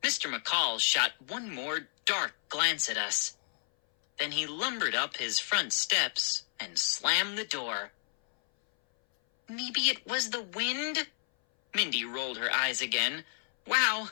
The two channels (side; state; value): right; silent; 57 dB below the other